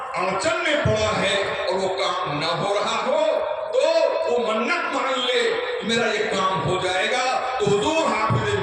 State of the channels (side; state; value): both; identical; correlation 1.00